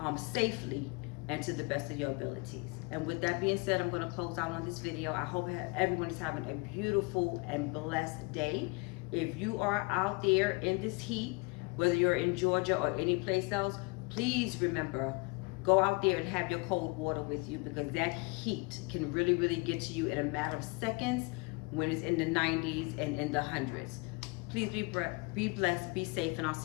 safely and to the best of your abilities. And with that being said, I'm going to close out on this video. I hope everyone is having a beautiful and blessed day. If you are out there in this heat, whether you're in Georgia or any place else, please remember, go out there and have your cold water with you, because that heat can really, really get to you in a matter of seconds when it's in the 90s and in the hundreds. Please be blessed, be safe, and I'll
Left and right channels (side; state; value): right; quieter; 28.0 dB